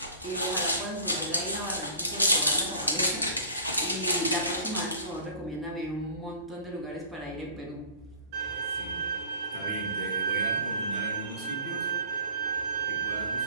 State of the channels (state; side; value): inverted; both; correlation -0.43